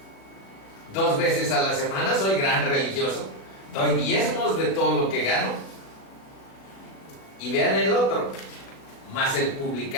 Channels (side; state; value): right; late; 36 ms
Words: 2 veces a la semana, soy gran religioso, doy diezmos de todo lo que gano. Y vean el otro, mas el